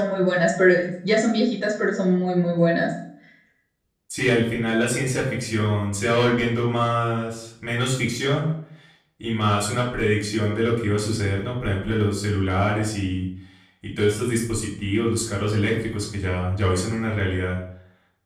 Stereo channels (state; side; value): identical; both; correlation 1.00